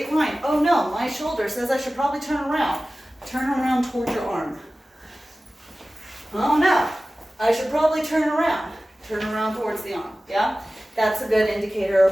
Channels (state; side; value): normal; both; correlation 0.96